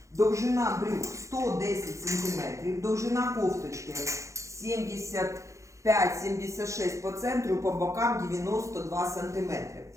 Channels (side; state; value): left; late; 0.15 ms